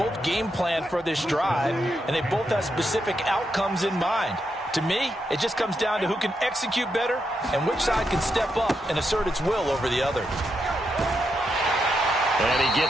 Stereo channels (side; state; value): both; normal; correlation 0.83